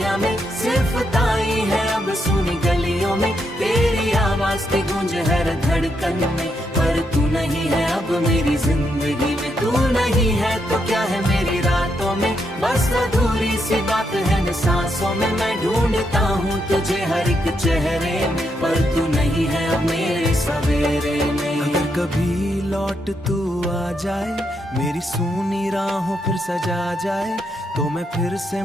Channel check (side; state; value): both; normal; correlation 0.80